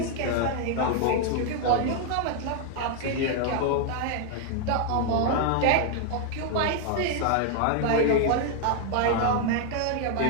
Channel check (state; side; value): different; both; correlation 0.00